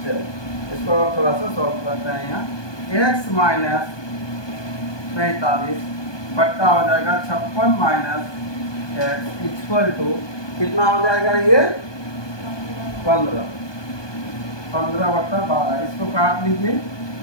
चलो इसको थोड़ा सा सॉल्व करते हैं। यहाँ x माइनस 45 बट्टा हो जाएगा 56 माइनस एक्स इक्वल टू कितना हो जाएगा, ये 15, 15/12। इसको काट लीजिए,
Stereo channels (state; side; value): late; right; 1.2 ms